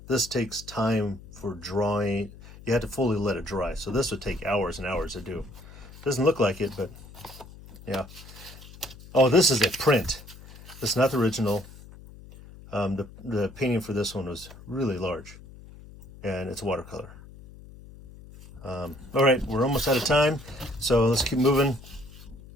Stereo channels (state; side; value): noise; left; hum, 18 dB below the sound